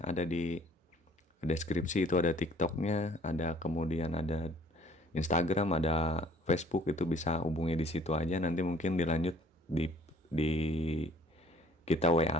ada di deskripsi itu ada TikToknya, ada kemudian ada Instagram, ada Facebook, itu bisa hubungi di situ aja. Nanti mungkin dilanjut di kita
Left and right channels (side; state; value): both; normal; correlation 0.56